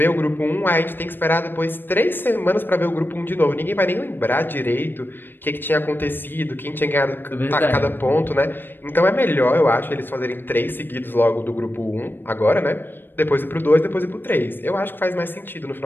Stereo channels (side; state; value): right; late; 0.096 ms